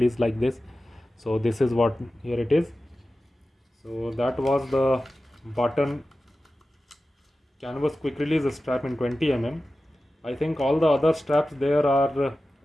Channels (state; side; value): normal; both; correlation 0.94